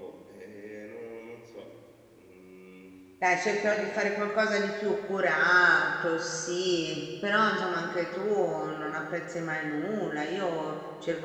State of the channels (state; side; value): identical; both; correlation 1.00